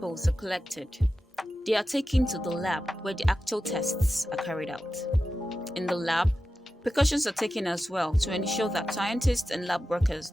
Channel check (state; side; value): normal; both; correlation 0.92